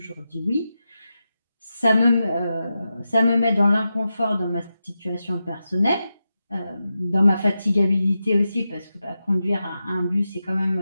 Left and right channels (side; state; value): both; inverted; correlation -0.90